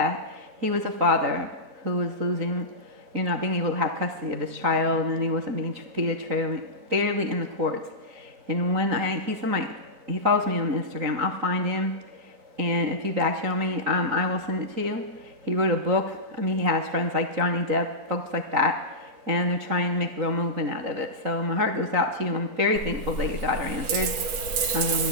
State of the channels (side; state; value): left; late; 4.4 ms